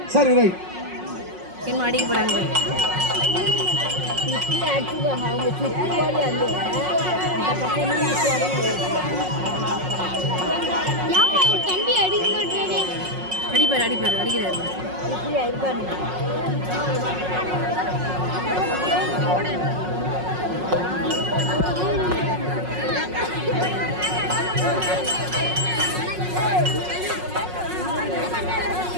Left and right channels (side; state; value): left; late; 5.5 ms